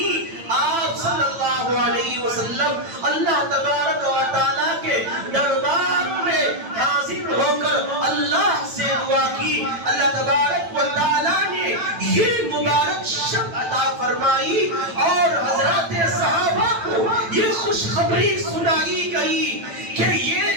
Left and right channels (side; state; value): left; late; 9.0 ms